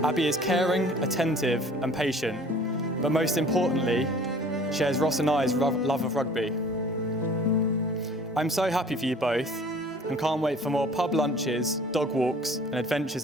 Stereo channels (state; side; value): normal; both; correlation 0.50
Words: Abi is caring, attentive and patient, but most importantly, shares Ross and I's love of rugby. I'm so happy for you both and can't wait for more pub lunches, dog walks and adventures